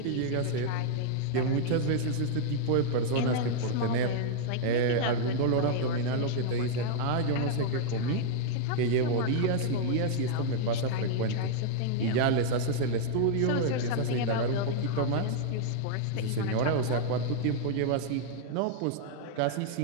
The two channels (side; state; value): both; different; correlation -0.01